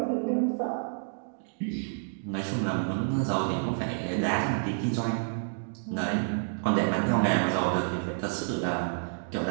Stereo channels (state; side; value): silent; left; digital silence